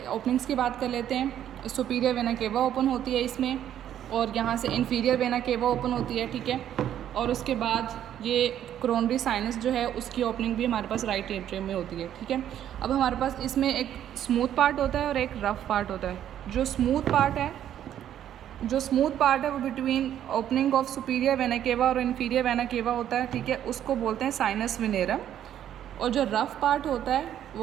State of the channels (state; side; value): quieter; left; 10.7 dB